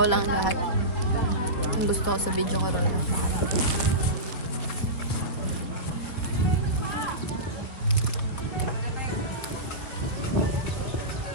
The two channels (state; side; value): late; right; 4.4 ms